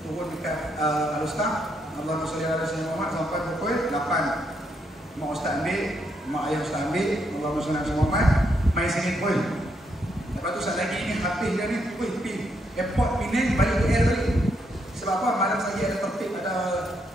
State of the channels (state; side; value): normal; both; correlation 0.77